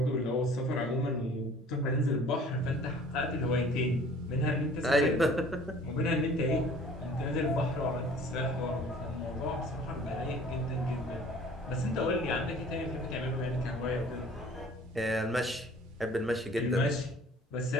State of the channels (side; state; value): both; normal; correlation 0.50